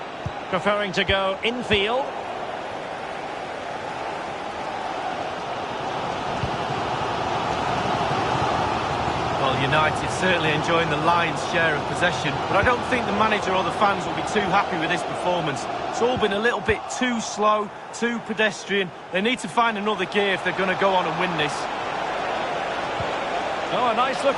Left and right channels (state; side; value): identical; both; correlation 1.00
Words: preferring to go infield. Well, United certainly enjoying the lion's share of possession, but I don't think the manager or the fans will be too happy with this performance. It's all been a little bit too slow, too pedestrian. They need to find another gear if they're going to go on and win this. Oh, a